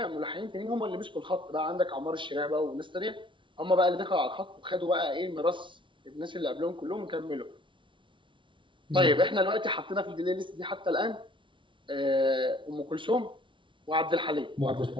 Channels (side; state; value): left; late; 0.24 ms